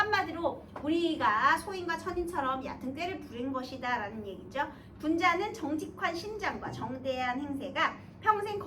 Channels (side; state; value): both; identical; correlation 1.00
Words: 우리가 소인과 천인처럼 얕은 꾀를 부린 것이다 라는 얘기죠. 군자는 정직한 심장과 정대한 행세가 평생